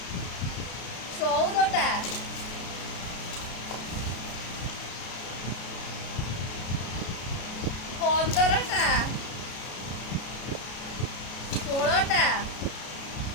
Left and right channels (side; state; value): right; late; 33 ms